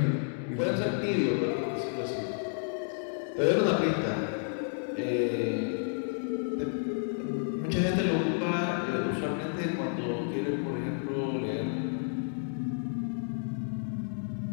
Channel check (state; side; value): silent; right; digital silence